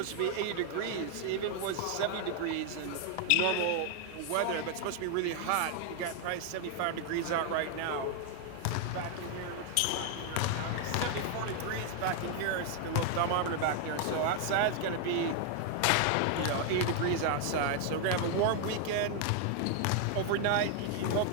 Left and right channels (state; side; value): different; both; correlation 0.00